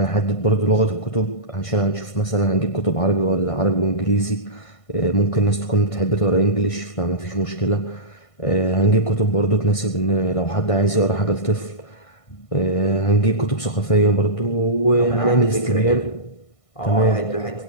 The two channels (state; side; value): late; right; 1.5 ms